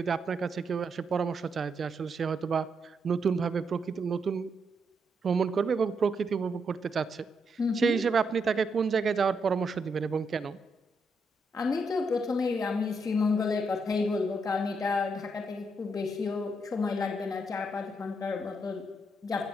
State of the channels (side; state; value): both; normal; correlation 0.79